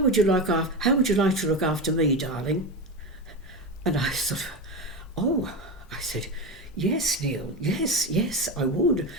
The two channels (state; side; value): normal; both; correlation 0.19